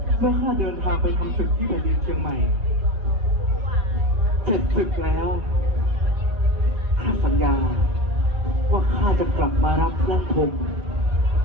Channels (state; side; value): late; left; 4.6 ms